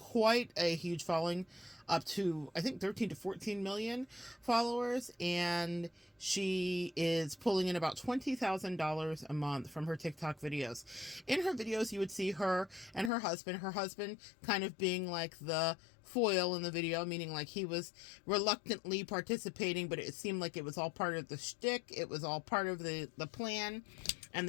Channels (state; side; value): drops out; right; at 13.1 s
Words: a huge following, up to, I think, 13 to 14 million followers. And she is pulling in about $20,000 a month from her TikTok videos. In her videos, you would see her and her husband kind of being like the foil in the video, meaning like he was reluctantly participating, but it seemed like it was all part of the shtick. It was all part of the plan and